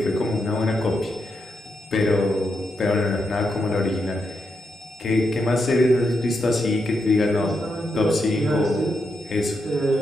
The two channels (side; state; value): both; normal; correlation 0.84